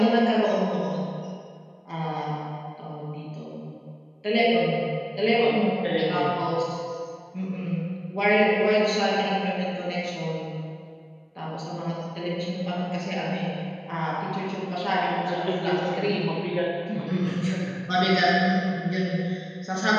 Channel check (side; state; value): both; identical; correlation 1.00